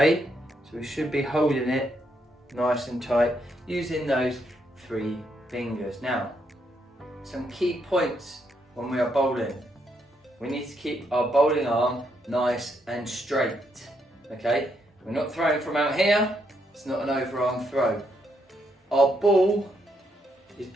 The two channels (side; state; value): both; normal; correlation 0.76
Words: So we should be holding it nice and tight using those 3 fingers. Now, some key points when we are bowling. We need to keep our bowling arm nice and straight, okay? We're not throwing from out here, it's not an overarm throw. Our ball is